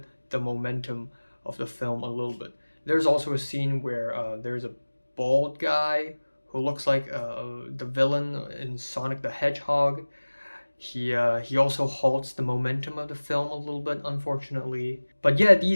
the momentum of the film a little bit. There's also a scene where there's a bald guy who looks like the villain in Sonic the Hedgehog. He also halts the momentum of the film a little bit, unfortunately. But yeah,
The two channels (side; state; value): both; inverted; correlation -1.00